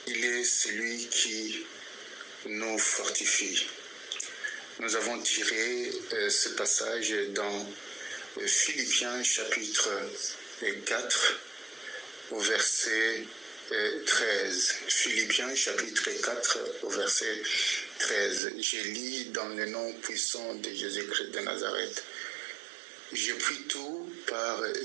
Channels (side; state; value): left; drops out; at 18.4 s